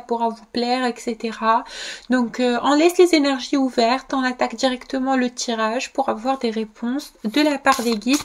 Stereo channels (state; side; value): identical; both; correlation 1.00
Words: pourra vous plaire, etc. Donc on laisse les énergies ouvertes, on attaque directement le tirage pour avoir des réponses de la part des guides